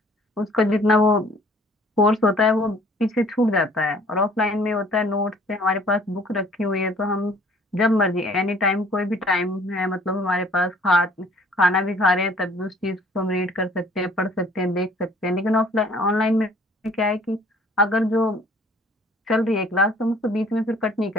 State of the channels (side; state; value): both; normal; correlation 0.55